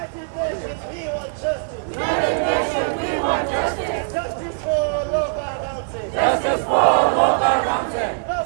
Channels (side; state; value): left; silent; digital silence